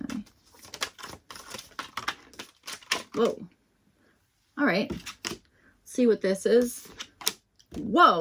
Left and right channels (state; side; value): identical; both; correlation 1.00